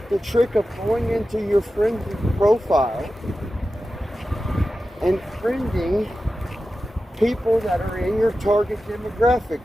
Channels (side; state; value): both; normal; correlation 0.93